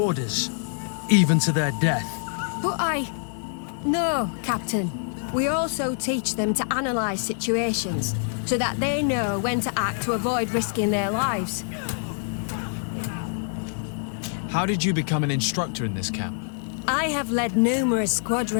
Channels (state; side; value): silent; right; digital silence